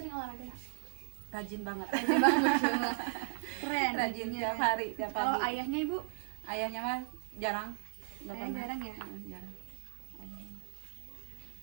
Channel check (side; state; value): left; silent; digital silence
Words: olahraga nggak? Rajin banget. Rajin banget. Keren. Rajin ibunya. tiap hari, tiap Kalau pagi. ayahnya ibu? Ayahnya mah jarang. Nggak Ayah pernah. jarang ya? Jarang.